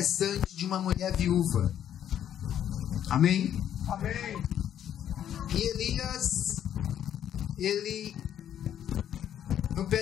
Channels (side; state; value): right; quieter; 10.2 dB